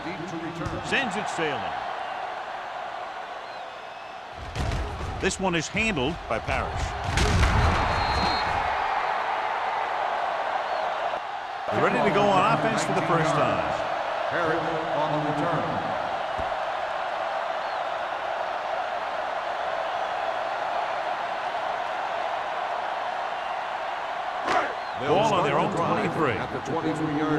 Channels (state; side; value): identical; both; correlation 1.00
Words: deep to return. Sends it sailing. This one is handled by Parrish. They're ready to go on offense for the first time. Harris on the return. Ball on their own 23. At the